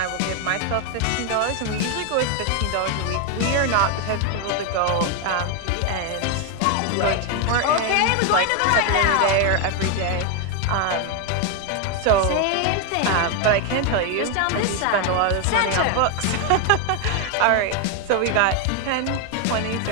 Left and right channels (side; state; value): both; different; correlation 0.01